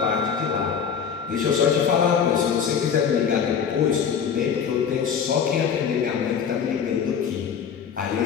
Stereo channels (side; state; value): right; quieter; 7.2 dB